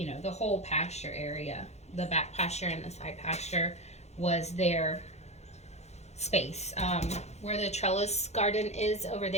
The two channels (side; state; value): right; late; 0.32 ms